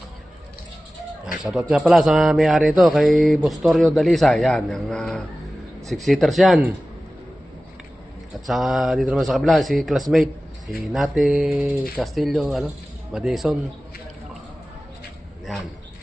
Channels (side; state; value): both; normal; correlation 0.96